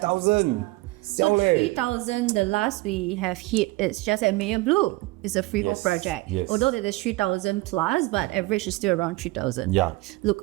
So 3,000, the last we have hit, it's just at Mayor Blue. It's a freehold project. Yes. Although it is 3,000 plus, but average is still around 3,000. Yeah.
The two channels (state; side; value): quieter; left; 21.4 dB